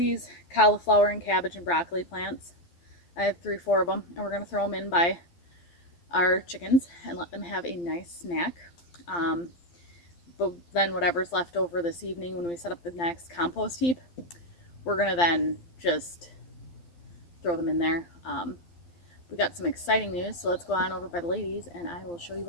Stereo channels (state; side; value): late; right; 12 ms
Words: cauliflower and cabbage and broccoli plants. I have 3 or 4 of them, and we're gonna throw them in by our chickens and let them have a nice snack. But then whatever's left over this evening when we set up the next compost heap, we're gonna then just throw them in there. We got some exciting news, so let's go on over by the ladies and I will show you